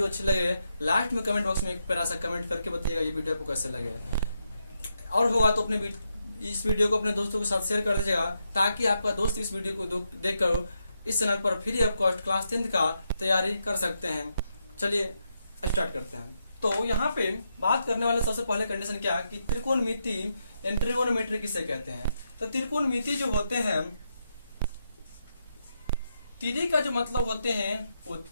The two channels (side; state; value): both; inverted; correlation -0.82